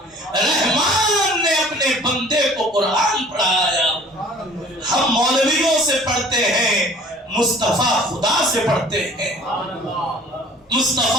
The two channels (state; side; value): normal; both; correlation 0.50